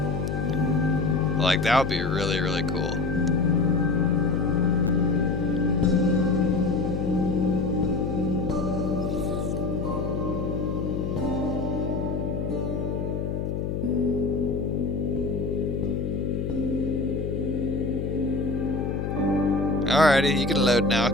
Like, that would be really, really cool. Alrighty, you can load now.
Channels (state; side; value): noise; left; hum, 2 dB below the sound